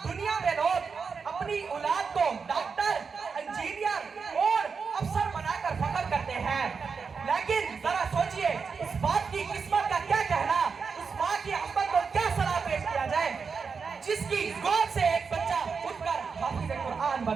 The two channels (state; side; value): quieter; left; 5.4 dB